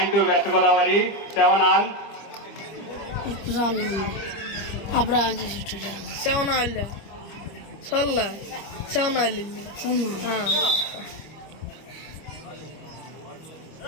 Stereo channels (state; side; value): late; right; 25 ms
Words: to west Godavari 7-all అప్పుడు 7-all సొల్ల 7-all